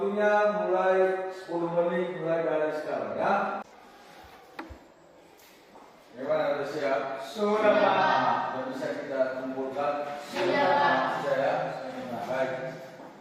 mulai 10 menit mulai dari sekarang, ya. Gimana, udah siap? Sudah, Pak. Sudah bisa kita kumpulkan? Sudah, Pak. Sudah, ya? Baik.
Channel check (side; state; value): both; identical; correlation 1.00